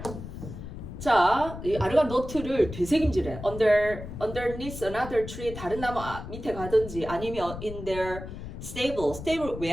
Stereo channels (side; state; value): left; noise; rumble, 10 dB below the sound